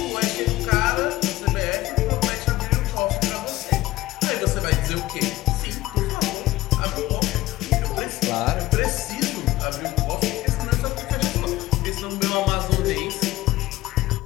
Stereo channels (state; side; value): quieter; right; 17.0 dB